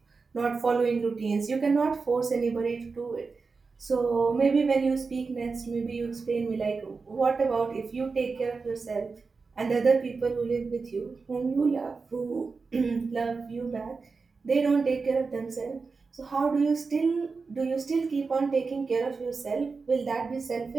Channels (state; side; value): quieter; left; 4.5 dB